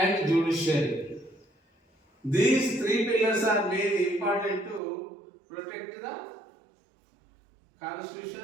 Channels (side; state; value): left; drops out; at 4.8 s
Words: judiciary. These three pillars are very important to protect the